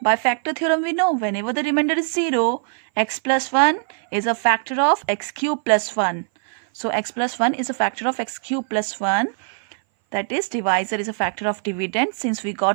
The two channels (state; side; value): silent; left; 59 dB below the other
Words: By factor theorem we know whenever the remainder is 0, x plus 1 is a factor of x cube plus 1. So x plus 1 is a factor of x cube plus 1. That is, divisor is a factor of dividend since we